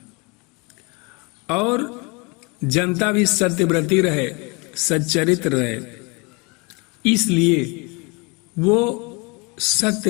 और जनता भी सत्यव्रती रहे, सच्चरित्र रहे, इसलिए वो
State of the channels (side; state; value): right; quieter; 29.2 dB